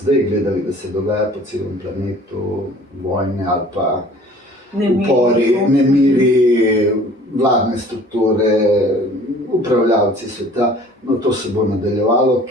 gledali, da se dogaja po celem planetu, vojne ali pa upori, nemiri, vladne strukture, upravljavci sveta, no to se bo nadaljevalo,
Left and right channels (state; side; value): normal; both; correlation 0.50